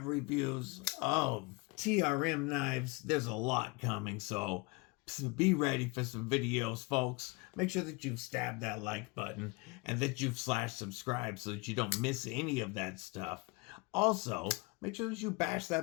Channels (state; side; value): quieter; right; 26.6 dB